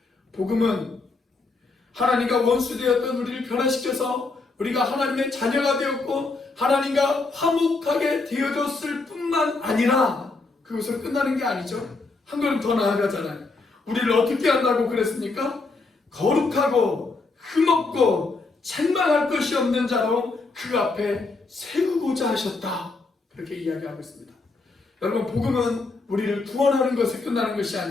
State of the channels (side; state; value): right; quieter; 3.7 dB